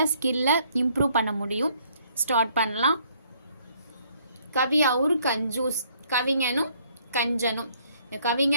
ஸ்கில்லை இம்ப்ரூவ் பண்ண முடியும். ஸ்டார்ட் பண்ணலாம். கவி அவுர் கஞ்சூஸ், கவிஞனும் கஞ்சனும். இந்த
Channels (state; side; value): inverted; both; correlation -0.65